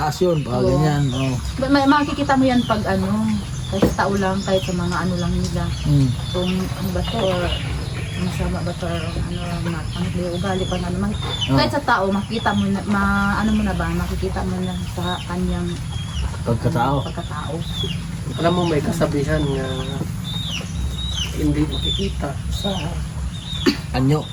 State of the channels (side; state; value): both; identical; correlation 1.00